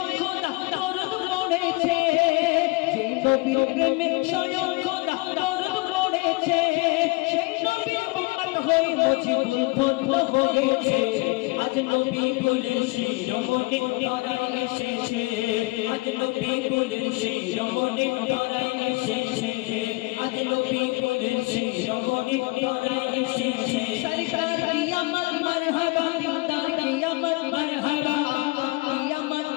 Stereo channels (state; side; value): quieter; right; 24.4 dB